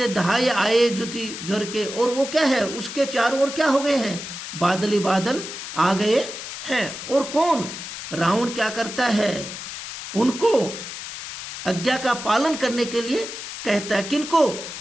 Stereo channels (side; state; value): left; noise; hiss, 9 dB below the sound